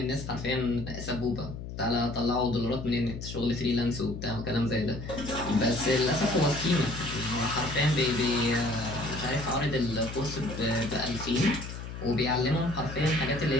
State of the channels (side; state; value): left; noise; hum, 9 dB below the sound